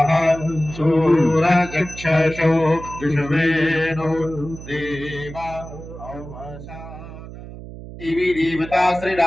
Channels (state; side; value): noise; right; hum, 13 dB below the sound